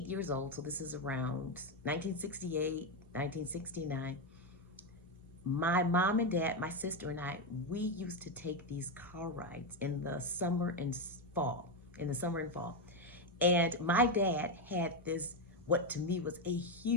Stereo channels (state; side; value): normal; both; correlation 0.08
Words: years old, so this is around 1968, 1969, my mom and dad, my sister and I, we used to take these car rides in the summer and fall, And my dad had this, what to me was a